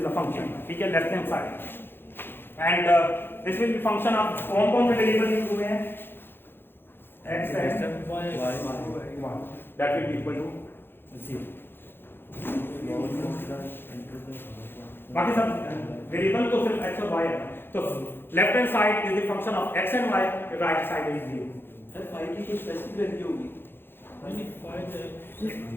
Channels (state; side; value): late; right; 0.10 ms